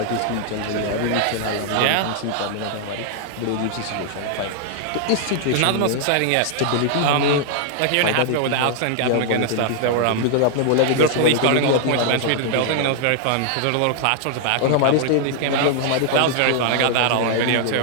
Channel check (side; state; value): both; different; correlation 0.00